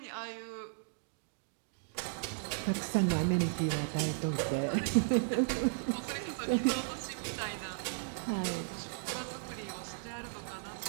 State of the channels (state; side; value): silent; left; digital silence